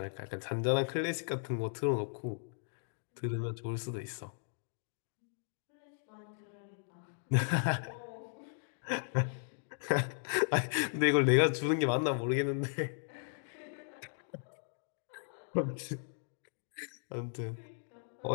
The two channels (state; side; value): silent; right; digital silence